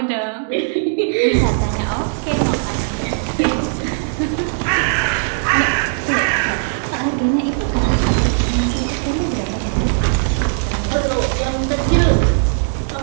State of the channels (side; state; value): left; silent; digital silence